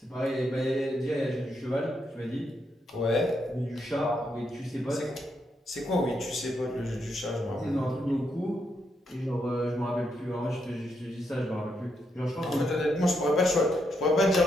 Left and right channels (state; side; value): normal; both; correlation 0.80